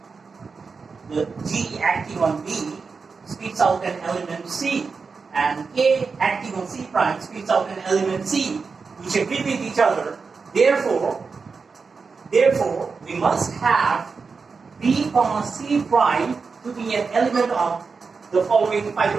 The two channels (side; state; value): left; quieter; 4.9 dB